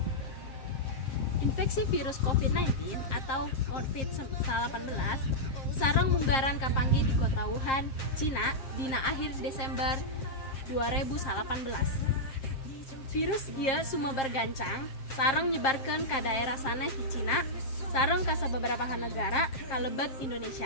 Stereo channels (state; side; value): late; right; 7.5 ms